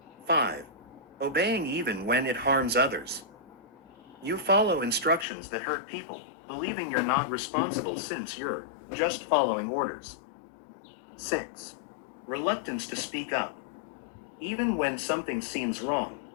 5. Obeying even when it harms others. You follow instructions that hurt people, believing you're not responsible since you're just following orders. 6. Reluctance to speak up. Even when something seems wrong,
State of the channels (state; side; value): drops out; right; at 5.2 s